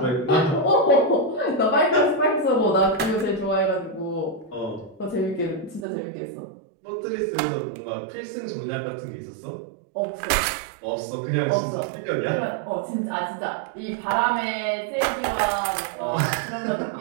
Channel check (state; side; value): drops out; left; at 5.9 s